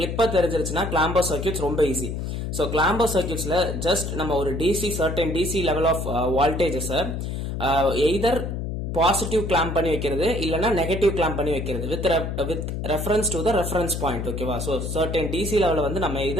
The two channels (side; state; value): left; noise; hum, 4 dB below the sound